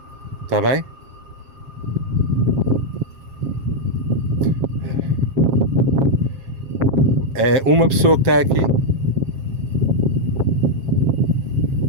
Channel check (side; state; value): left; late; 7.4 ms